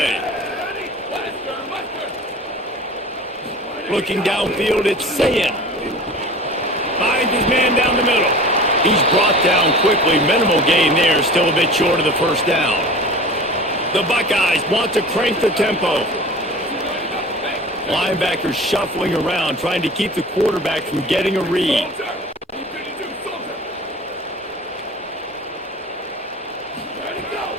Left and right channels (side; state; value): both; normal; correlation 0.39